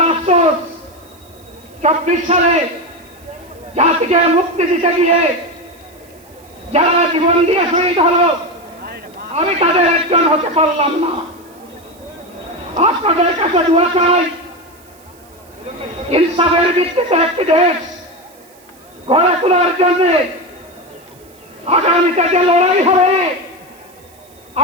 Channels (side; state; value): right; noise; hiss, 28 dB below the sound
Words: আফসোস, 24 সালে জাতিকে মুক্তি দিতে গিয়ে যারা জীবন দিয়ে শহীদ হলো, আমি তাদের একজন হতে পারলাম না। আপনাদের কাছে দোয়া চাই, ইনসাফের ভিত্তিতে একটি দেশ গড়ে তোলার জন্য আগামীতে যে লড়াই হবে,